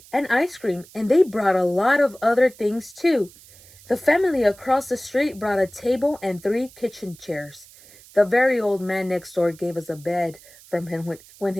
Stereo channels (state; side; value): noise; right; hiss, 23 dB below the sound